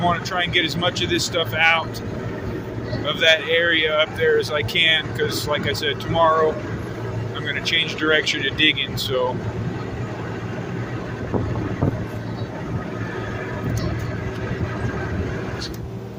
want to try and get as much of this stuff out of that area up there as I can, because like I said, tomorrow I'm going to change direction to digging, so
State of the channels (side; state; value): both; identical; correlation 1.00